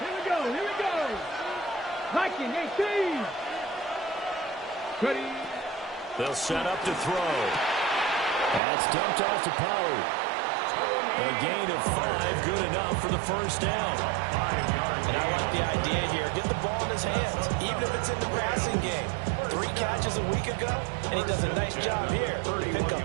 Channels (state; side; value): drops out; left; at 8.6 s